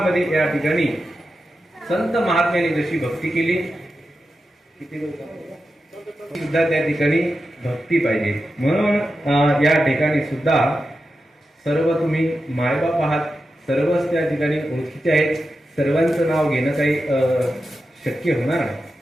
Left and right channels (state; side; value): normal; both; correlation 0.90